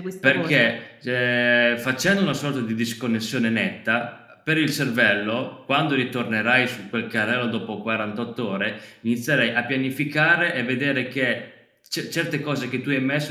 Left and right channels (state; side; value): identical; both; correlation 1.00